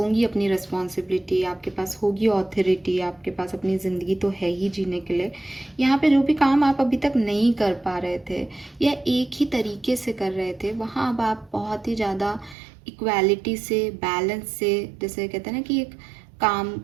अपनी रिस्पॉन्सिबिलिटी, आपके पास होगी ऑथोरिटी, आपके पास अपनी ज़िंदगी तो है ही जीने के लिए। यहाँ पे जो भी काम आप अभी तक नहीं कर पा रहे थे या एक ही तरीके से कर रहे थे, वहाँ अब आप बहुत ही ज़्यादा इक्वालिटी से, बैलेंस से, जैसे कहते हैं ना कि एक काम,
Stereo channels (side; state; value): left; drops out; at 12.6 s